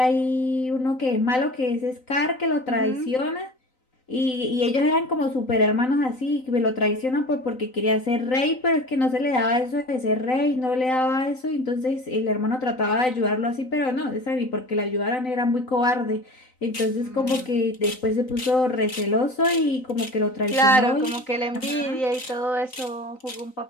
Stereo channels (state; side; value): late; right; 3.9 ms